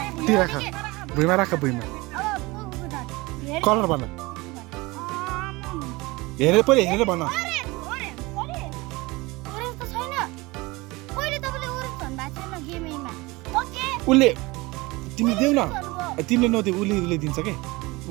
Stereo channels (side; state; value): left; quieter; 22.8 dB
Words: तिर राख भुइँमा राख भुइँमा कलर भन हेरेर पहिले हेरेर भन उसले तिमी देऊ न तिमीले नदेऊ उसले दिन्छ के